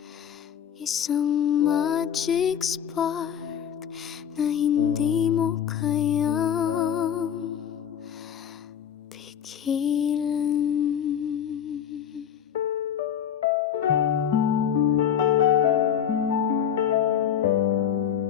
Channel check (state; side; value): quieter; right; 8.9 dB